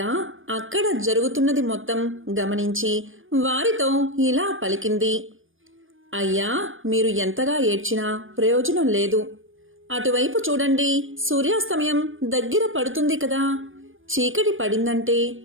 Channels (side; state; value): left; late; 0.59 ms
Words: అక్కడ జరుగుతున్నది మొత్తం గమనించి వారితో ఇలా పలికింది. అయ్యా, మీరు ఎంతగా ఏడ్చినా ప్రయోజనం లేదు. అటువైపు చూడండి, సూర్యాస్తమయం దగ్గర పడుతుంది కదా. చీకటి పడిందంటే